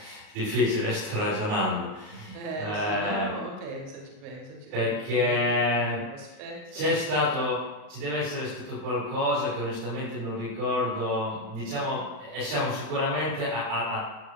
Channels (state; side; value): late; left; 38 ms